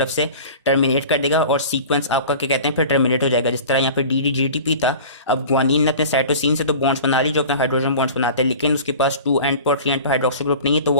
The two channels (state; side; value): inverted; both; correlation -0.39